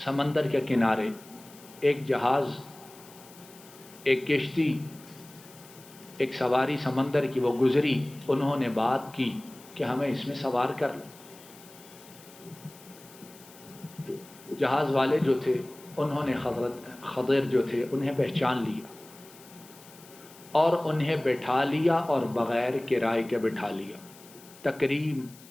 کے کنارے ایک جہاز، ایک کشتی، ایک سواری سمندر کی وہ گزری، انہوں نے بات کی کہ ہمیں اس میں سوار کر لو۔ جہاز والے جو تھے انہوں نے خضر جو تھے انہیں پہچان لیا اور انہیں بٹھا لیا، اور بغیر کرائے کے بٹھا لیا۔ تکریم،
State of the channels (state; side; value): noise; left; hiss, 22 dB below the sound